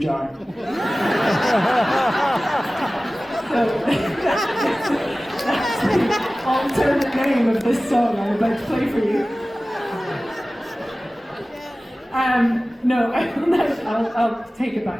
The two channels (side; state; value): both; normal; correlation 0.97